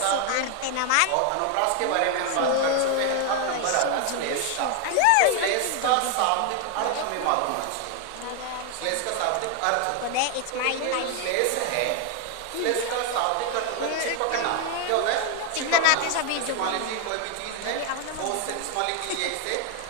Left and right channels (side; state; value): both; different; correlation 0.01